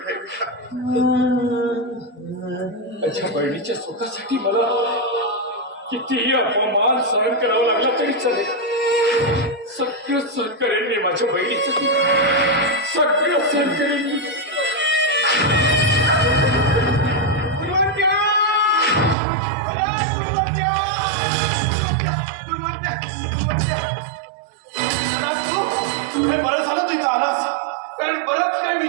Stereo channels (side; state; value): left; drops out; at 19.2 s